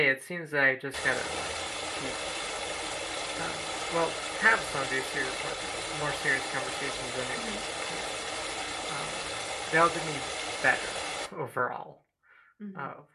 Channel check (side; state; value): both; identical; correlation 1.00